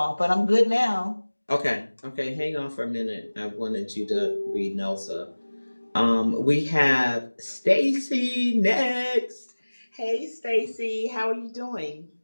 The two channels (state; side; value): inverted; both; correlation -1.00